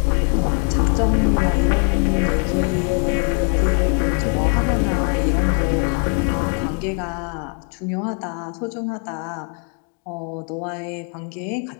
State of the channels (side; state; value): right; quieter; 39.1 dB